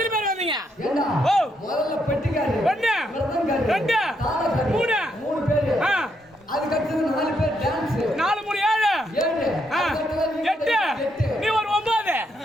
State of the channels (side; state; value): both; normal; correlation 0.77